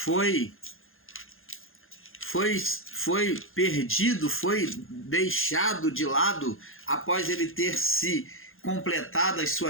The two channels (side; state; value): right; late; 0.60 ms